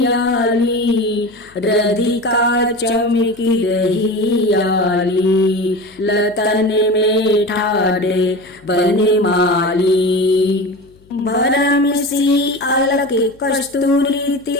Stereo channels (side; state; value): left; noise; hum, 29 dB below the sound